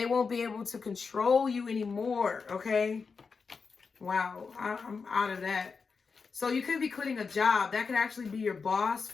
won't be able to control you anymore. Okay. Wow. I'm out of that. So you could be quitting a job. That could actually be your boss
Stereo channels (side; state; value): right; quieter; 5.1 dB